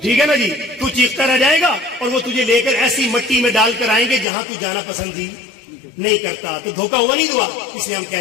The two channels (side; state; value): right; drops out; at 4.2 s